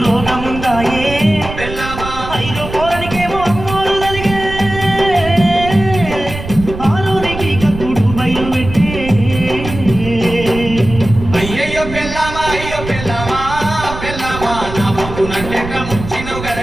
రోగముందాయే ఐదో పోరనికేమో అమ్మోరు తలిగే ఆరోనికి కక్కుడు బయలు పెట్టే అయ్యయ్యో పెళ్ళామా అయ్యో పెళ్ళామా పెళ్ళామా నా బొక్కునంటెట్ల ముంచినవు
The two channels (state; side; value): noise; right; rumble, 9 dB below the sound